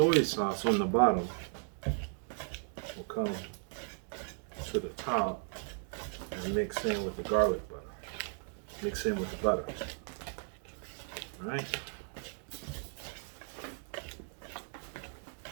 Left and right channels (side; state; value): left; silent; 54 dB below the other